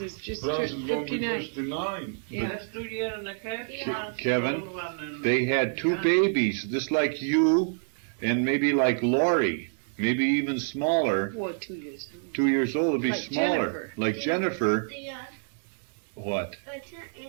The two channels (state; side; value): silent; left; digital silence